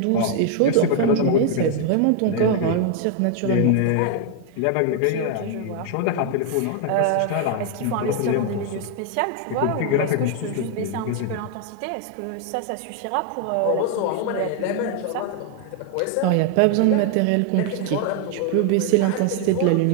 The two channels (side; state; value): both; different; correlation 0.00